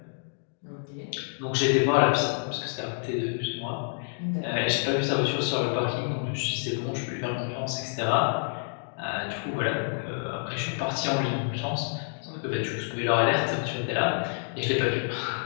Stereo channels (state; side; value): silent; right; digital silence